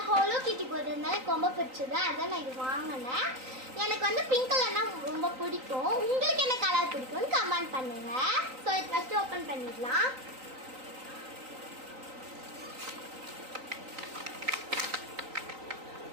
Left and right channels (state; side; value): late; left; 3.9 ms